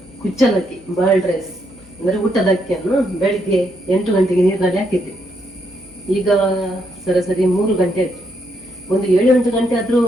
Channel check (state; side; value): noise; left; hum, 27 dB below the sound